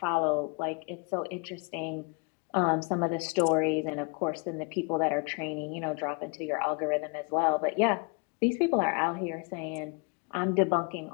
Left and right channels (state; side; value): quieter; right; 33.7 dB